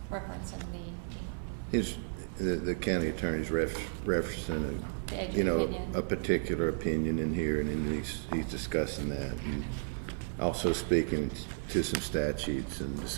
referenced in The county attorney's referencing The edge of opinion. a particular opinion in here, and then he's discussing that, and also speaking to some statutes and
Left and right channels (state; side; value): silent; left; digital silence